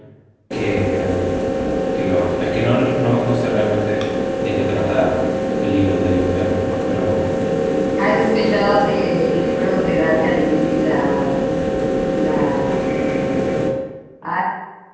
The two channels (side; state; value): both; identical; correlation 1.00